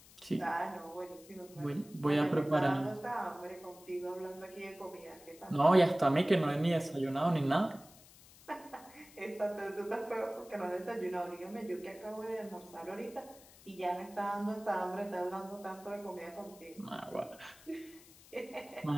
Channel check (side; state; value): left; noise; hiss, 22 dB below the sound